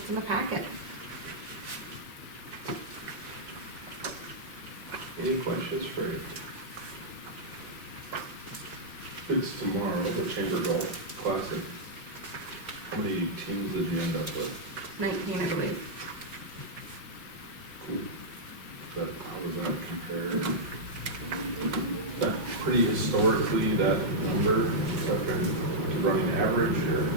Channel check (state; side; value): late; left; 4.8 ms